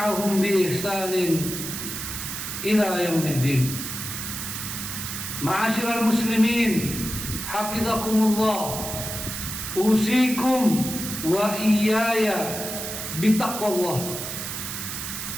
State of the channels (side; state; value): right; noise; hiss, 6 dB below the sound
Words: بإحسان إلى يوم الدين. معاشر المسلمين حفظكم الله، أوصيكم وإياي بتقوى الله